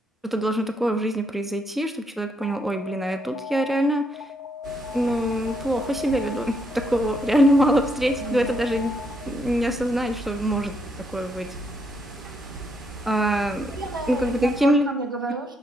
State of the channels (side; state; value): both; normal; correlation 0.76